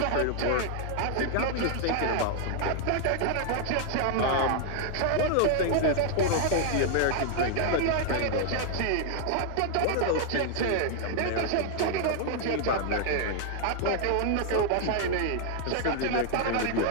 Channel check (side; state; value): both; different; correlation 0.00